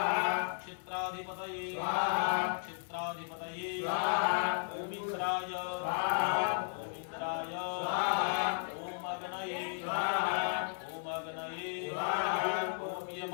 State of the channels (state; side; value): silent; right; digital silence